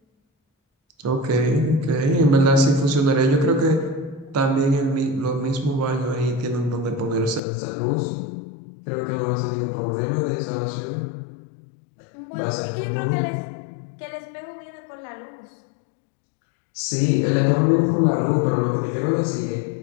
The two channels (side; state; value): right; drops out; at 7.4 s